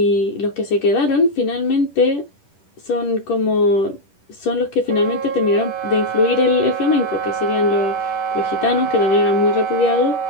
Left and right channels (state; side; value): late; right; 10 ms